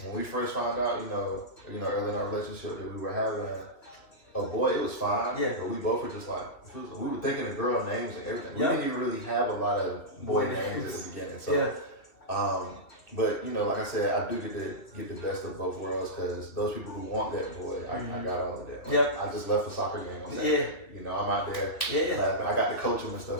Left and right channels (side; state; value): right; late; 3.0 ms